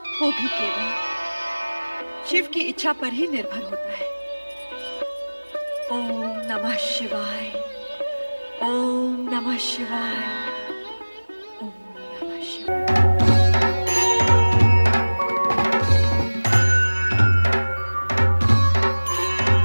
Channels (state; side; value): inverted; both; correlation -1.00